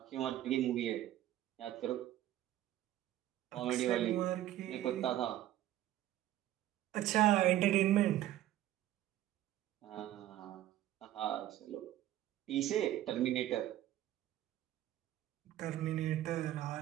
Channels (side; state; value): left; quieter; 13.3 dB